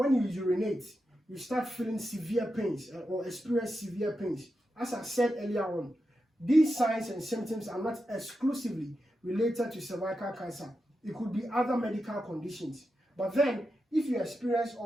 you urinate, you start feeling severe pains or experience severe pains. As I said earlier on, these signs and symptoms are not exclusively related to cervical cancer. It could be other medical conditions. But then, if you experience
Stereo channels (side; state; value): both; normal; correlation 0.88